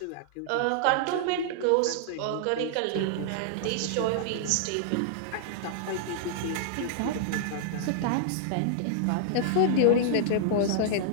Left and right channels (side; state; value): both; different; correlation -0.01